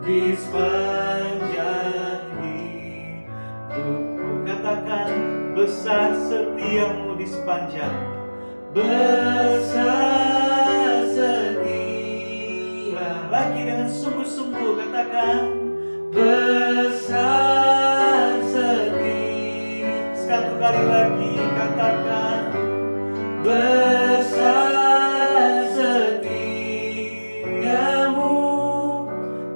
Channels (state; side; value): inverted; both; correlation -1.00